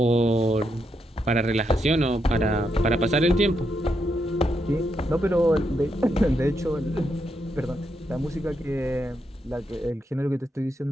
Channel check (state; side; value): normal; both; correlation 0.81